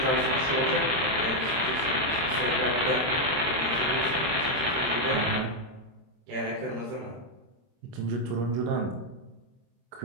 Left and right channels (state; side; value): late; left; 26 ms